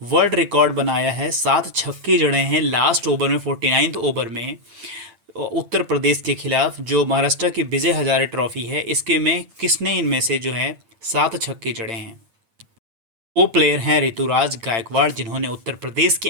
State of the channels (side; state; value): left; late; 8.8 ms